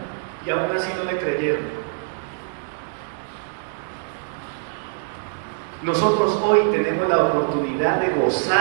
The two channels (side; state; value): left; silent; digital silence